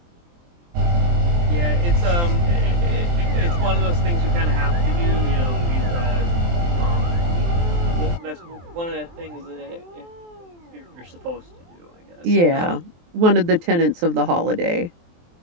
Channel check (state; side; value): late; left; 23 ms